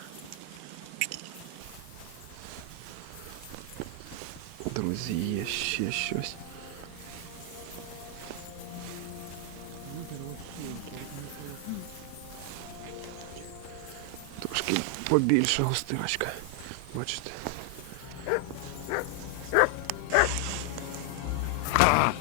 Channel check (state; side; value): different; both; correlation 0.00